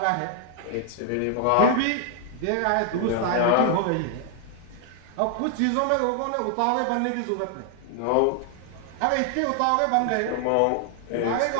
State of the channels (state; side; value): different; both; correlation 0.00